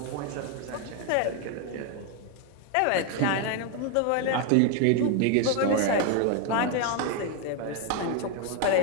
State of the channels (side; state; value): both; different; correlation 0.01